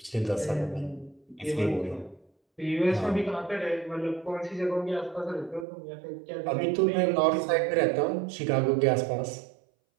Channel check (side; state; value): left; drops out; at 5.7 s